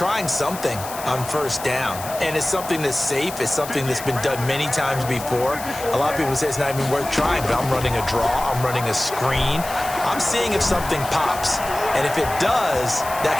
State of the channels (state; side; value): noise; left; hiss, 12 dB below the sound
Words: something on first down, and it's something that's safe. It's something that's been done many times before. A lot of people say it's not even worth trying, but I'm running a draw. I'm running a screen. I'm seeing if something pops. And if it does, that